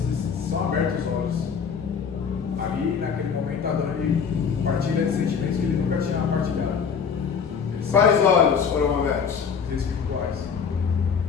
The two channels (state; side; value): quieter; right; 6.5 dB